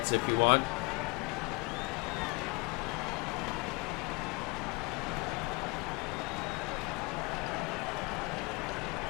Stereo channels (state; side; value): quieter; right; 28.4 dB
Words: if you want.